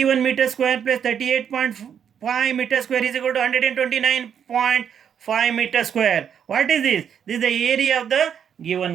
meter square plus 38.5 meter square is equal to 129.5 meter square. What is this? This is the area of the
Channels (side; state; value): left; quieter; 8.2 dB